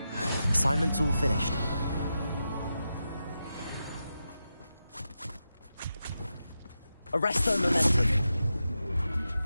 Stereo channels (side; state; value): both; inverted; correlation -0.89